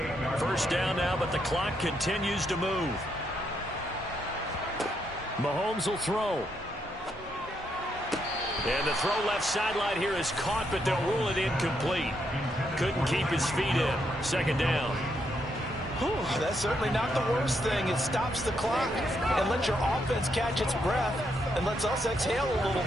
First down now, but the clock continues to move. Mahomes will throw. And the throw left sideline here is caught, but they'll rule it incomplete. Couldn't keep his feet in. 2nd down. Whew, that's certainly not the worst thing. It stops the clock and lets your offense catch its breath and lets us exhale a little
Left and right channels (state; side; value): normal; both; correlation 0.78